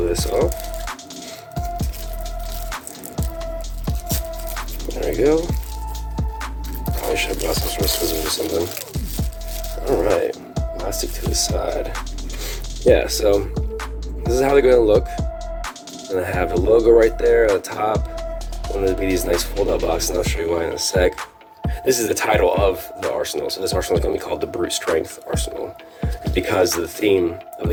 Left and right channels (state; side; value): identical; both; correlation 1.00